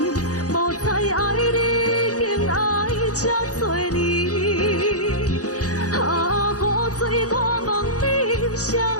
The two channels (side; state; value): right; late; 0.67 ms